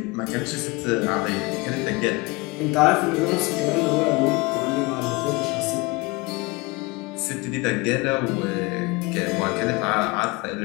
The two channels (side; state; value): right; quieter; 24.7 dB